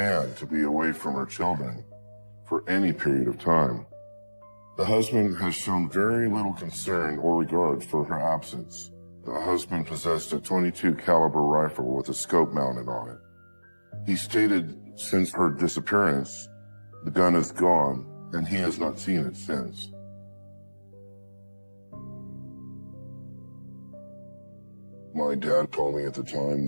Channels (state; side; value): inverted; both; correlation -1.00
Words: to be away from her children for any period of time. The husband has shown very little concern or regard for her absence. The husband possessed a .22 caliber rifle with a scope mounted on it. He stated since her disappearance, the gun is gone and he has not seen it since. My dad told me at the time